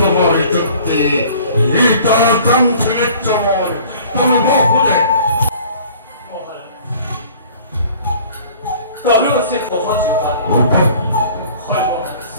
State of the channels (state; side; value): inverted; both; correlation -0.50